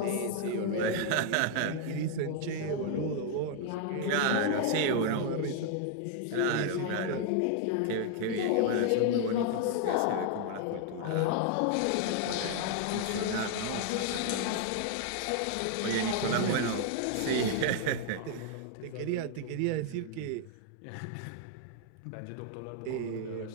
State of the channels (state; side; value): different; both; correlation 0.00